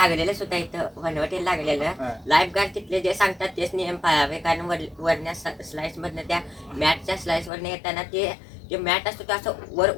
सुद्धा इथं वनवटीला लागलेलं लाईफ गार्ड तिथले जे सांगतात तेच नियम पाळावे. कारण वरच्या स्लाइस मधनं त्या मॅटच्या स्लाइस वरनं येताना जे मॅट असतो तो असं वर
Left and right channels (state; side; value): drops out; right; at 7.5 s